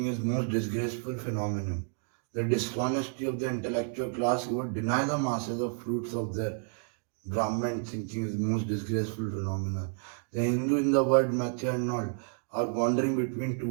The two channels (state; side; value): silent; left; 57 dB below the other